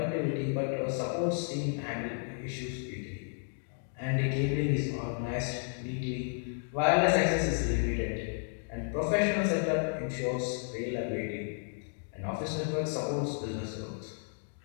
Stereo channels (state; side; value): silent; right; 56 dB below the other